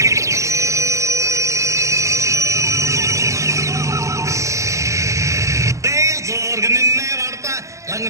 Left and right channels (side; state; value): left; late; 0.15 ms